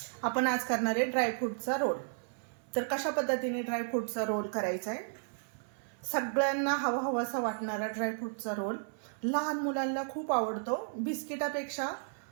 आपण आज करणार आहे ड्रायफ्रूटचा रोल. तर कशा पद्धतीने ड्रायफ्रूटचा रोल करायचा आहे. सगळ्यांना हवाहवासा वाटणारा ड्रायफ्रूटचा रोल. लहान मुलांना खूप आवडतो. बिस्किटापेक्षा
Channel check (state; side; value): silent; left; 55 dB below the other